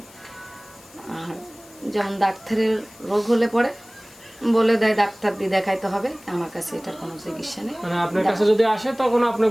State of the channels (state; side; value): noise; left; hiss, 23 dB below the sound